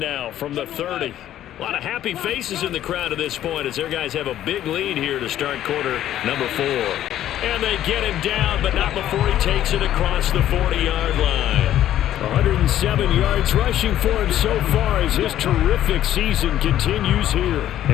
from the 30. A lot of happy faces in the crowd at this point as their guys have a big lead here to start quarter number 4. And they get him down, but not before he takes it across the 40-yard line. 107 yards rushing for him so far as his terrific season continues here.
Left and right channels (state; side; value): quieter; right; 12.1 dB